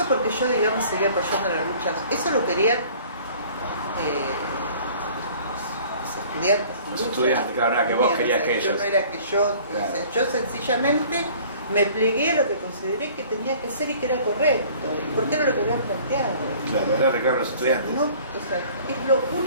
porque yo, digamos, seguía apoyando la lucha. Eso lo querían los estudiantes, claro, no era que vos querías que ellos. Yo no era que yo, claro. O sea, yo sencillamente me plegué a lo que consideré que tenía que ser y que era correcto, y porque era lo que habían planteado. Claro, era reclamo de los estudiantes. No, o sea, es lo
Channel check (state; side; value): inverted; both; correlation -0.51